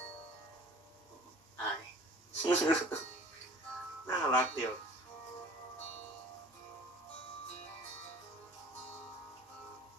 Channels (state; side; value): normal; both; correlation 0.47